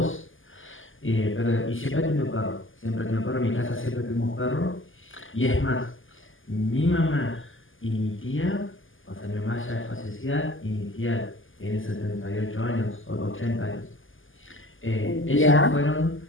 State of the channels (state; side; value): late; right; 0.58 ms